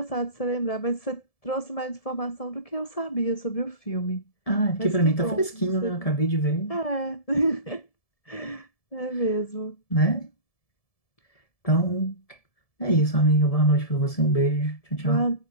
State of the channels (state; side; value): late; right; 1.7 ms